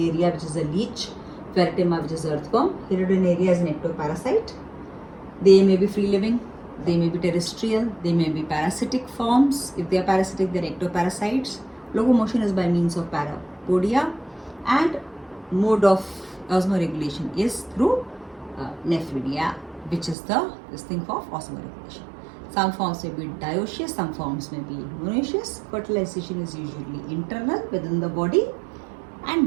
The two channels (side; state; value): left; drops out; at 20.2 s